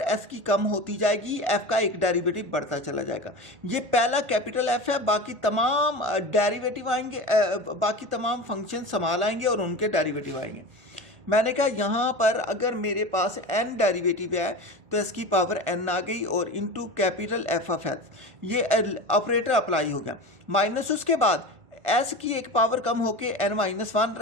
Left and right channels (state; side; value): late; left; 1.4 ms